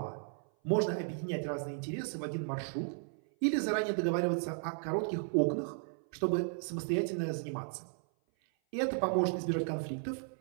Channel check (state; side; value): silent; left; 55 dB below the other